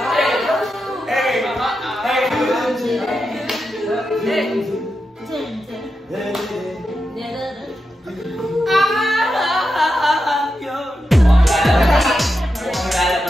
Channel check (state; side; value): normal; both; correlation 0.88